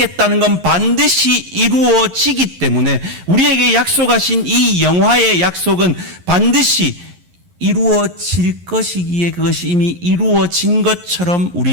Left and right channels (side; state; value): left; late; 11 ms